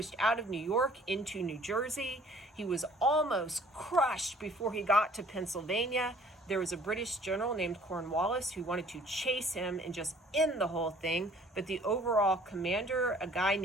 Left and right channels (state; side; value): normal; both; correlation 0.54